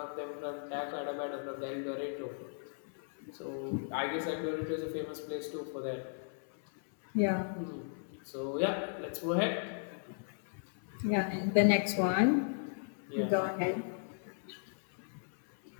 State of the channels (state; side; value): silent; right; 54 dB below the other